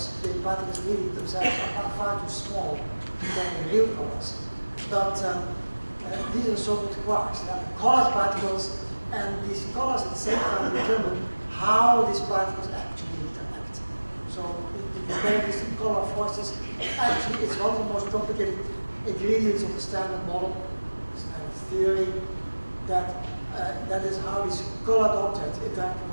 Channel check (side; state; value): both; inverted; correlation -1.00